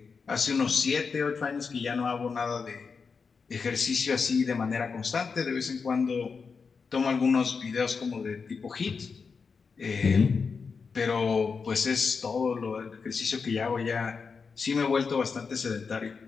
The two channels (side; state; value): right; quieter; 5.3 dB